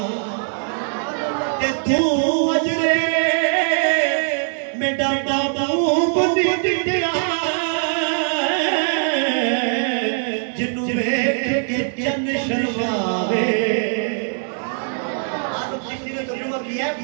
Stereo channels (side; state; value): left; silent; 56 dB below the other